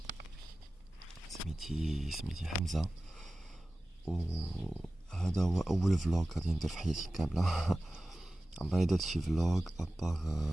سميتي حمزة، وهذا هو اول فلوق غادي ندير في حياتي كامله. عمري درت شي فلوق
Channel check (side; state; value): both; normal; correlation 0.96